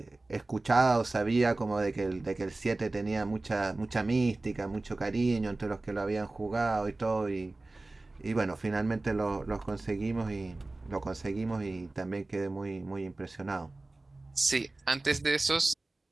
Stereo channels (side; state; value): left; quieter; 3.1 dB